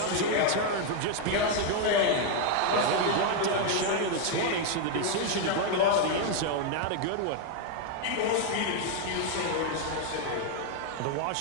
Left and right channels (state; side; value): different; both; correlation 0.00